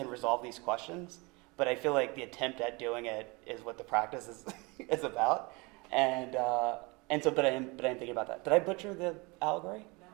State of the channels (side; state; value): left; quieter; 26.7 dB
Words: resolve these questions, but I feel like the attempt at doing it is what the practice is about. And so, but I am thinking about that. Did I butcher the allegory? No.